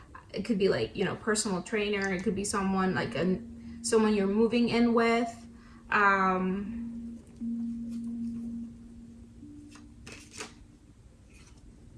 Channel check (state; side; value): identical; both; correlation 1.00